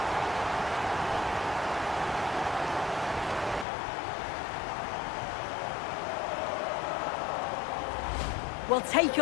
Well, take a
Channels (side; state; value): right; drops out; at 3.7 s